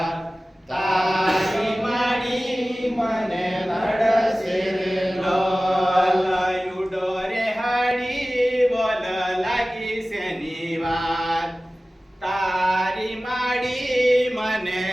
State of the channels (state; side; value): normal; both; correlation 0.97